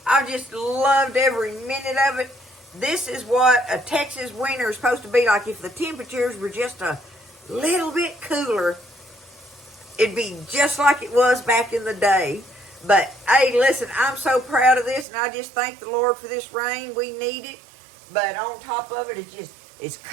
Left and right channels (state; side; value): drops out; left; at 15.1 s